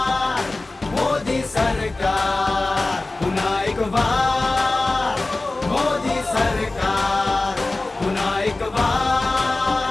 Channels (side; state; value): right; quieter; 3.1 dB